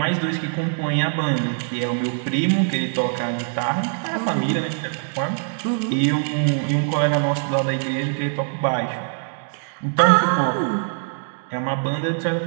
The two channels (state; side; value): silent; left; digital silence